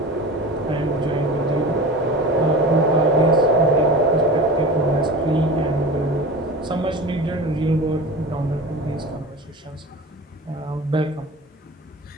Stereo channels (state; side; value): normal; both; correlation 0.33